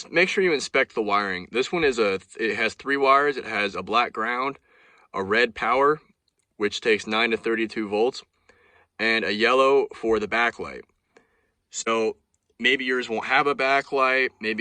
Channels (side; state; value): both; identical; correlation 1.00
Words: make sure you inspect the wiring. This one it has 3 wires. It has a black ground, a red power, which takes 9 to 32 volts, and a yellow for the backlight. So maybe yours won't have a backlight,